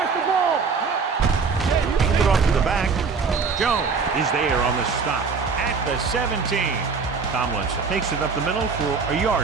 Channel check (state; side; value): quieter; left; 5.0 dB